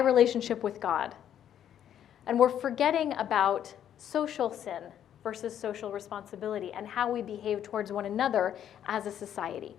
with God. And we're forgetting about social sin versus social responsibility and how we behave towards one another as a society.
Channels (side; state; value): right; quieter; 10.1 dB